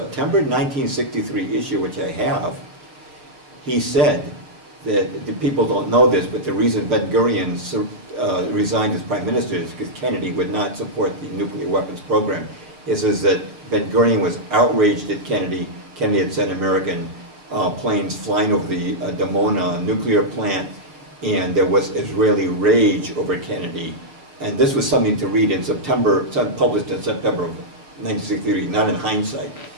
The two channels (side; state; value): left; late; 6.5 ms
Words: 1963 issue, which I have, he said that, the people don't know this, but the reason Ben-Gurion resigned as prime minister is because Kennedy would not support the nuclear weapons program. It says that Ben-Gurion was outraged at Kennedy. Kennedy had sent American planes flying over the Dimona nuclear plant, and there was Israeli rage over Kennedy. And this was something to read in September, published in September of 1963, not in hindsight,